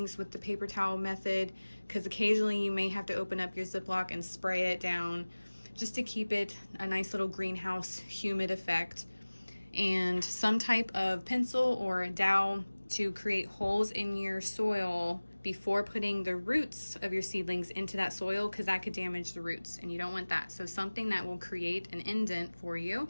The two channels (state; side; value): inverted; both; correlation -1.00